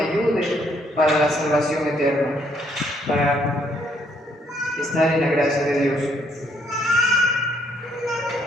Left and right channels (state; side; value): normal; both; correlation 0.69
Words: ayude para la salvación eterna, para estar en la gracia de Dios.